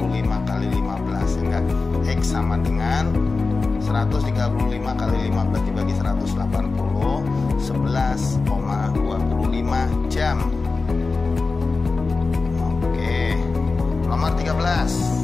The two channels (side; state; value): right; quieter; 4.0 dB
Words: kali 15, sehingga X sama dengan 135 kali 15 dibagi 180, 11,25 jam. Oke, nomor 13.